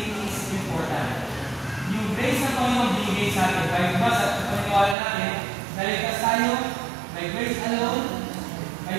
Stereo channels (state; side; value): drops out; left; at 5.0 s